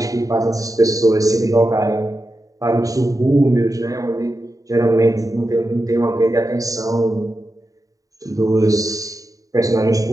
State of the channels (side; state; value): left; late; 0.16 ms